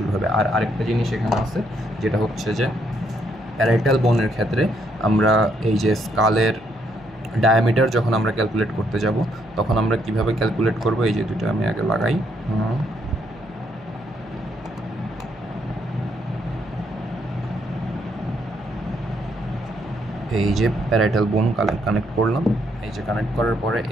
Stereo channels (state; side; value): noise; left; hum, 22 dB below the sound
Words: হবে। আর আরেকটা জিনিস এখানে আছে যেটা হচ্ছে যে প্যারাইটাল বোনের ক্ষেত্রে আমরা এই যে স্কালের ডায়ামিটার যখন আমরা ক্যালকুলেট করতে যাব তখন আমরা কিভাবে ক্যালকুলেট করব, এই যে দুটো আমি আগে লাগাই। এই যে প্যারাইটাল বোন কানেক্ট করলাম, এই যে কানেক্ট করার পরে